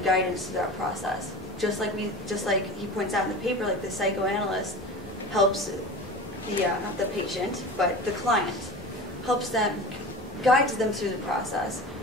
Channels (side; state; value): both; normal; correlation 0.33